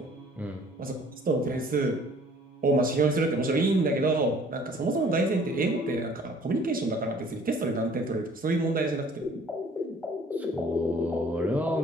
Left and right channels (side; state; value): both; normal; correlation 0.55